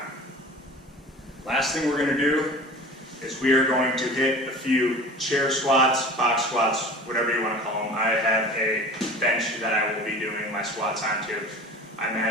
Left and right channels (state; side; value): normal; both; correlation 0.39